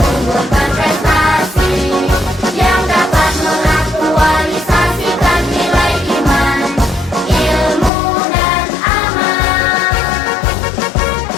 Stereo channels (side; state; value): right; drops out; at 7.9 s